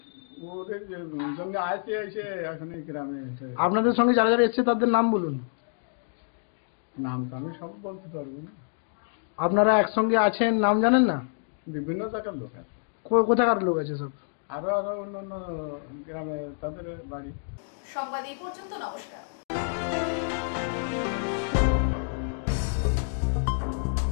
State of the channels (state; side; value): silent; right; digital silence